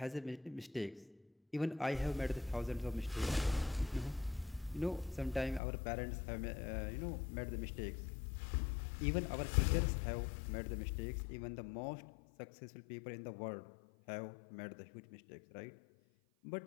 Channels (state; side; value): drops out; right; at 5.6 s